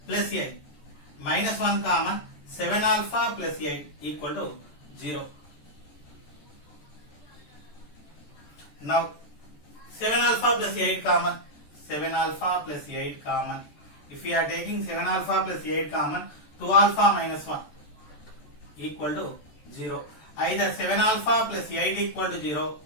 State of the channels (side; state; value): right; late; 14 ms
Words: plus 8 minus 1 common, 7 alpha plus 8 equal to 0. Now 7 alpha plus 8 common, 7 alpha plus 8 common. If we are taking 7 alpha plus 8 common, 2 alpha minus 1 equal to 0. Either 7 alpha plus 8 equal to 0